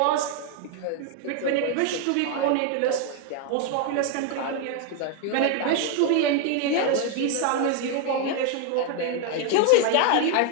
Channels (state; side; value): different; both; correlation 0.01